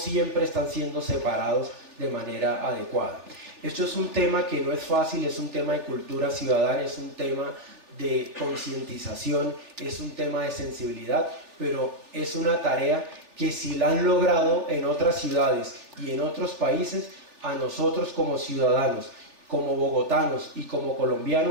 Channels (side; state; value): left; late; 3.4 ms